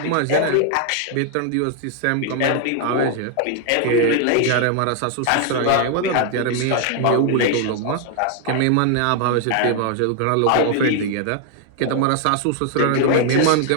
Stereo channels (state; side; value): different; both; correlation 0.00